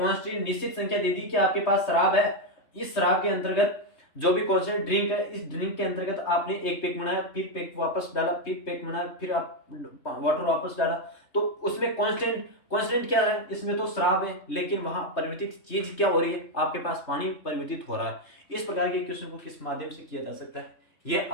निश्चित संख्या दे दी कि आपके पास शराब है, इस शराब के अंतर्गत जो भी कांस्टेंट ड्रिंक है, इस ड्रिंक के अंतर्गत आपने एक पैक बनाया, फिर पैक वापस डाला, फिर पैक बनाया, फिर आप वाटर वापस डाला, तो उसमें कांस्टेंट क्या है, इसमें तो शराब है, लेकिन वहां परिवर्तित चीज क्या हो रही है, आपके पास पानी परिवर्तित हो रहा है। इस प्रकार के क्वेश्चन को किस माध्यम से किया जा सकता है, यह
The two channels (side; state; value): right; late; 3.2 ms